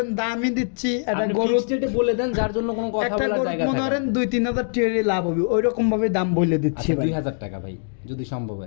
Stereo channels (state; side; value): silent; right; digital silence